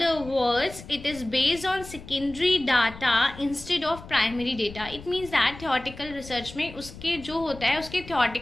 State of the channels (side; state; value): left; noise; rumble, 16 dB below the sound